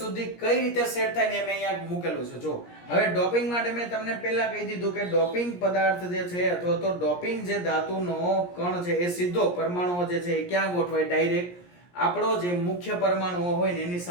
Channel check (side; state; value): right; late; 17 ms